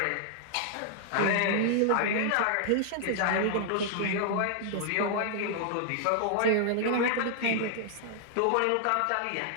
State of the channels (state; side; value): different; both; correlation 0.00